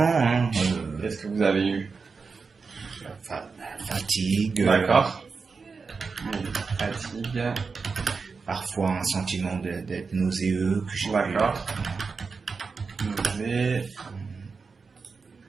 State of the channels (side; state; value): left; quieter; 4.8 dB